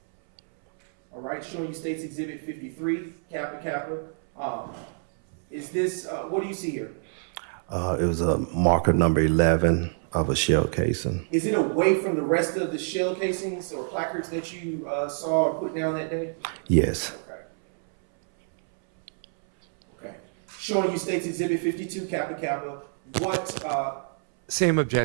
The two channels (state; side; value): silent; left; 60 dB below the other